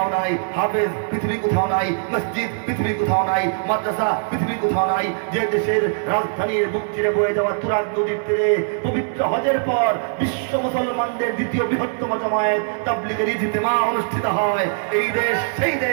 নাই, হাফেজ পৃথিবী কোথাও নাই, মসজিদ পৃথিবী কোথাও নাই, মাদ্রাসা পৃথিবী কোথাও নাই। যে দেশের রাজধানীর বুক চিরে বয়ে যাওয়া তুরাগ নদীর তীরে পবিত্র হজের পর বিশ্ব মুসলমানদের দ্বিতীয় বৃহত্তম জামায়াত তাবলীগের ইজতিমা অনুষ্ঠিত হয়। এই দেশ সেই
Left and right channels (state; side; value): silent; left; 65 dB below the other